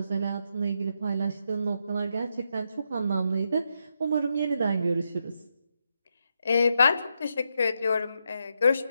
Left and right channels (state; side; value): inverted; both; correlation -0.82